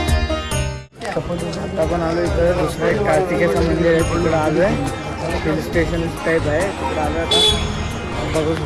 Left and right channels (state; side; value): identical; both; correlation 1.00